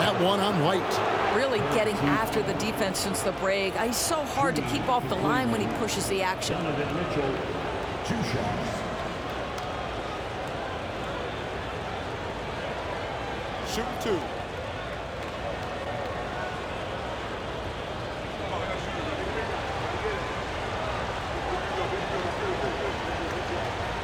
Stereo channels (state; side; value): identical; both; correlation 1.00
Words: That one on White. Really getting after the defense since the break. He's so hard to keep off the line when he pushes the action. Donovan Mitchell, 2 shots. Shoot 2.